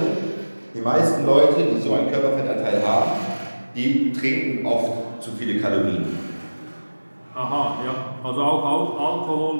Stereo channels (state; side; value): inverted; both; correlation -1.00